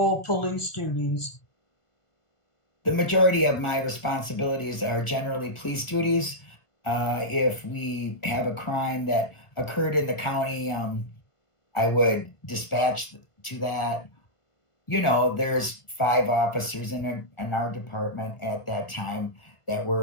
police duties? The majority of my responsibilities are generally police duties. If we have a crime that occurred in the county, I would dispatch to that. There's 5 officers in our department at that time that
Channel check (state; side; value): late; right; 1.5 ms